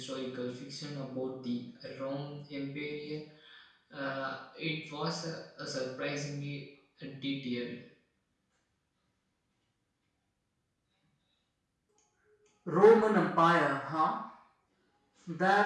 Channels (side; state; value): both; identical; correlation 1.00